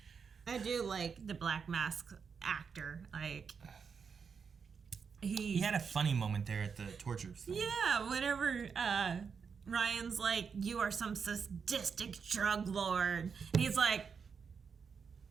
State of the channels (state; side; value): quieter; left; 6.1 dB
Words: I do like the Black Mask actor. Like, he had a funny moment there at the torture thing. Yeah, whenever Ryan's like, you are some sadistic drug lord. And he's like,